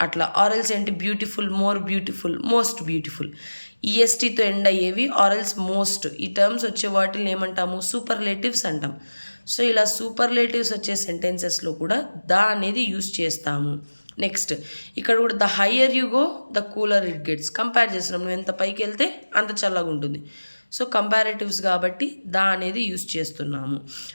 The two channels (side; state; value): both; inverted; correlation -1.00